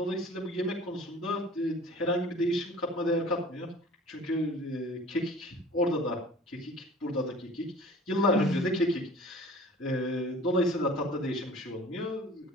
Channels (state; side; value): normal; both; correlation 0.45